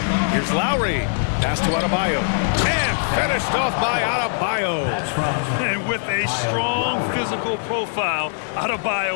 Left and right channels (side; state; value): right; silent; digital silence